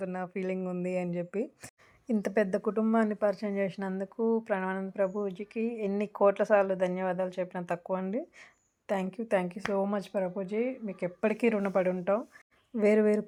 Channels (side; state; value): both; identical; correlation 1.00